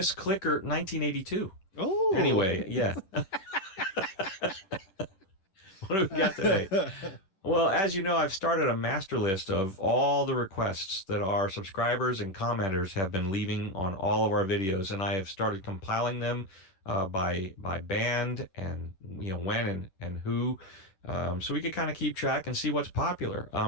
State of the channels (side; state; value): right; late; 10 ms